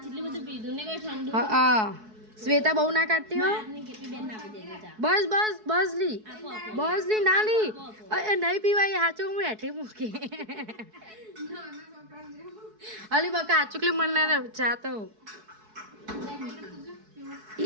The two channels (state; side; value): late; left; 4.6 ms